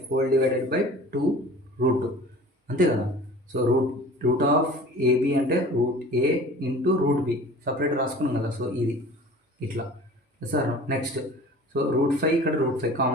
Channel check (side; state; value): both; normal; correlation 0.42